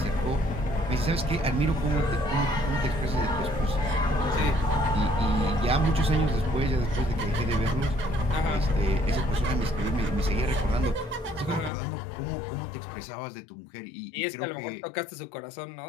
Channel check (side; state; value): right; drops out; at 11.7 s